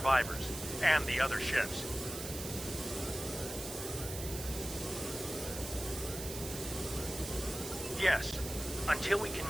and the other ships. Yes, until we can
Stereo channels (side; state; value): right; noise; hiss, 8 dB below the sound